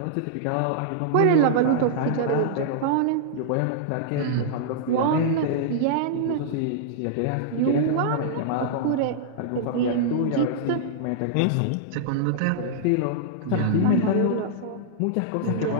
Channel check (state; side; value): different; both; correlation -0.02